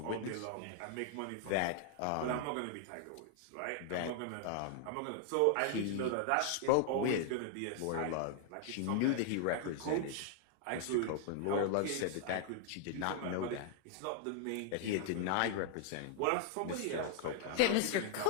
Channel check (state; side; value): different; both; correlation 0.00